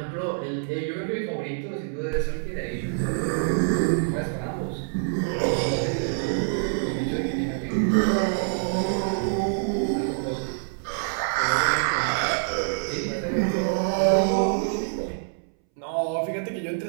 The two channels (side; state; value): left; silent; 61 dB below the other